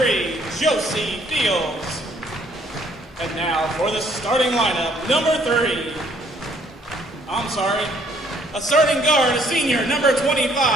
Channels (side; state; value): both; normal; correlation 0.64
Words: Josie Fields. And now for the starting lineup, number 3. A starting guard, a senior, number